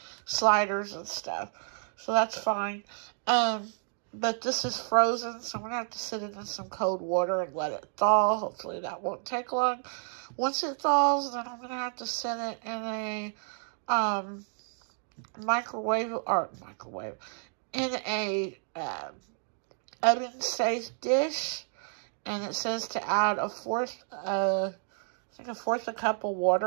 sliders and stuff. So that's fine. But this is frozen, so I'm going to have to sit it in some cold water and let it thaw. Hopefully that won't take long. Once it thaws, then I'm going to have to set it in a in a oven-safe dish. And it says to add a fourth a cup of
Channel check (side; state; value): left; silent; 57 dB below the other